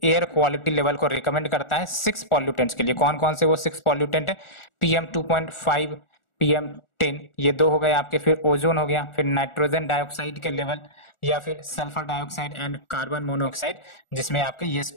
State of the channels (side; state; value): right; late; 1.4 ms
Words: एयर क्वालिटी लेवल को रिकमेंड करता है 6 पॉल्यूटेंट्स के लिए। कौन कौन से वो 6 पॉल्यूटेंट है? PM2.5, PM10, ये 2 हो गए आपके। फिर ओजोन हो गया, फिर नाइट्रोजन डाइऑक्साइड के लेवल, या फिर sulphur dioxide and carbon monoxide, जिसमें आपके ये